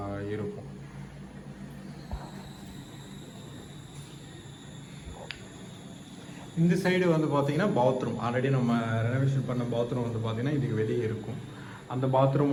இருக்கும். இந்த சைடு வந்து பார்த்தீங்கன்னா பாத்ரூம், ஆல்ரெடி நம்ம ரெனோவேஷன் பண்ண பாத்ரூம் வந்து பார்த்தீங்கன்னா இதுக்கு வெளியே இருக்கும். அந்த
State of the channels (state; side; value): identical; both; correlation 1.00